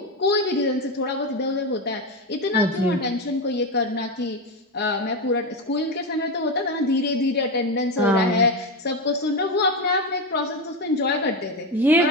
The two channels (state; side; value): normal; both; correlation 0.14